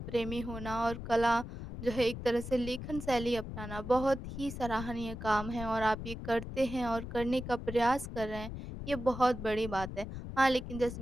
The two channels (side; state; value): left; noise; rumble, 8 dB below the sound